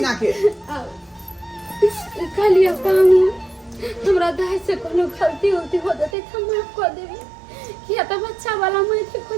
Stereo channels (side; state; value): left; drops out; at 6.2 s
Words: के खालिया पाऊ हमरा दाई से कोनो गलती होती हो जते त माफ कर देबी किया त बच्चा वाला मैं के